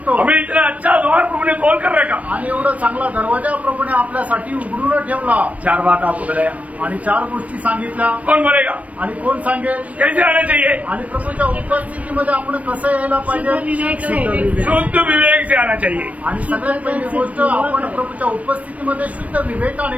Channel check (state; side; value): late; left; 0.067 ms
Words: हमें इतना अच्छा द्वार प्रभु ने खोल कर रखा. आणि एवढा चांगला दरवाजा प्रभूने आपल्यासाठी उघडून ठेवला. 4 बात आपको बताया आणि 4 गोष्टी सांगितल्या. कौन बोलेगा? आणि कोण सांगेल कैसे आना चाहिए? आणि प्रभूच्या उपस्थितीमध्ये आपण कसं यायला पाहिजे. शुद्ध विवेक से आना चाहिए. आणि सगळ्यात पहिली गोष्ट आपण प्रभूच्या उपस्थितीमध्ये शुद्ध